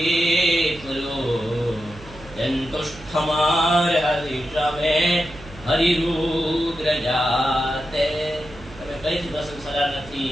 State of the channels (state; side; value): noise; right; hum, 18 dB below the sound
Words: જંતુષ્ઠમાર હરિશ્રમે હરિરુદ્ર જાતે. તમે કઈથી પ્રસન્ન થનાર